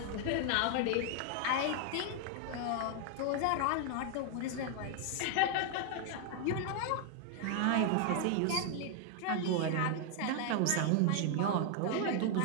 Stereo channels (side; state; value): both; different; correlation 0.00